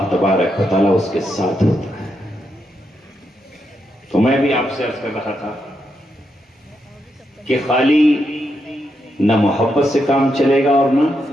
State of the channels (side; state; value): both; normal; correlation 0.82